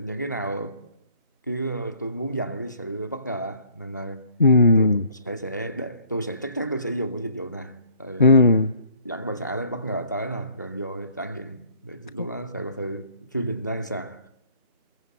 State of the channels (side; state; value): both; inverted; correlation -0.59